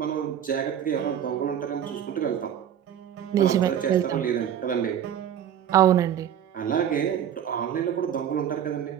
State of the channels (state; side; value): quieter; left; 9.5 dB